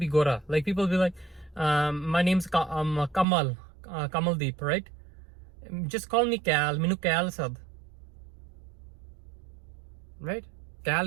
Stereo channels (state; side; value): drops out; left; at 3.2 s